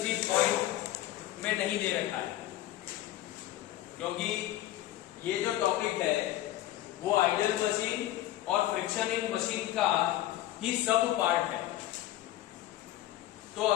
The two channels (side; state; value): right; quieter; 14.5 dB